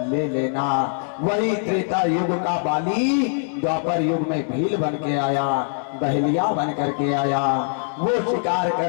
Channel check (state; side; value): silent; right; digital silence